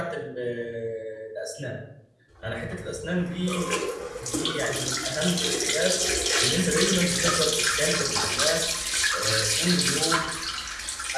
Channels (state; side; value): identical; both; correlation 1.00